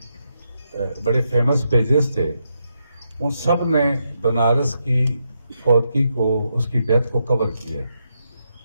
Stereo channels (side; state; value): both; inverted; correlation -0.82